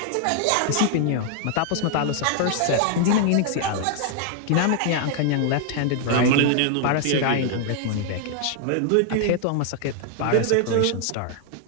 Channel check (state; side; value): different; both; correlation 0.00